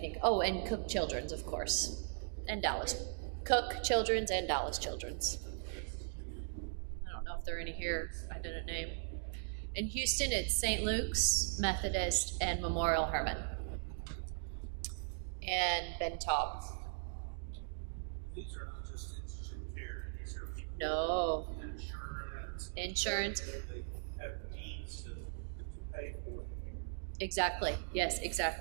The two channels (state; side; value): silent; left; digital silence